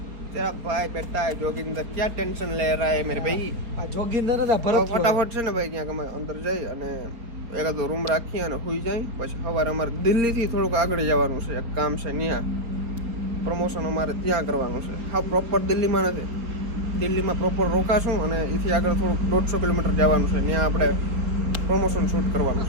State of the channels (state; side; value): late; left; 4.4 ms